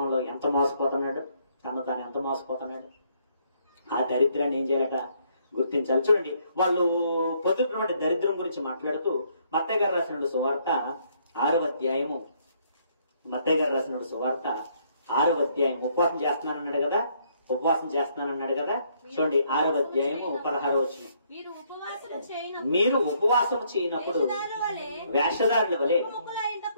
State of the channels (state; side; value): inverted; both; correlation -0.69